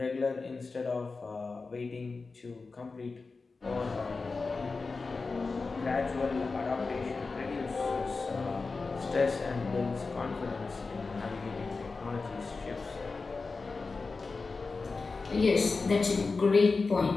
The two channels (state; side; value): quieter; right; 4.1 dB